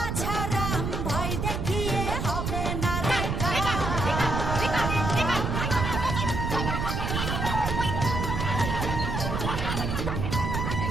ভয় দেখিয়ে হবে না রে কাম।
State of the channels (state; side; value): noise; right; rumble, 1 dB below the sound